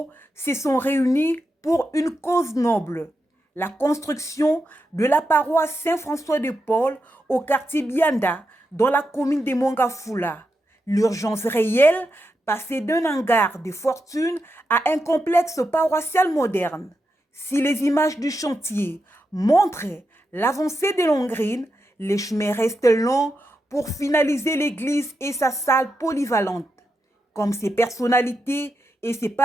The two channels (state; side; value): normal; both; correlation 0.86